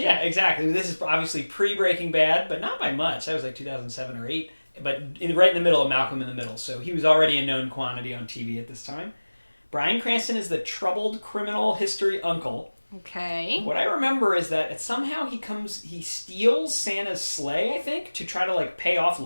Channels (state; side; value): inverted; both; correlation -1.00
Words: Yeah, exactly. This is obviously pre-Breaking Bad, but not by much. That was like 2007 or 8, but right in the middle of Malcolm in the Middle. So he was already a known quantity on TV at this time. Bryan Cranston is the troubled criminal history uncle. Okay. What I remember is that somehow he steals Santa's sleigh, I think, to try to pay off